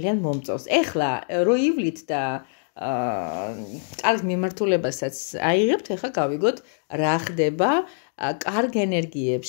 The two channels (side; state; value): right; silent; digital silence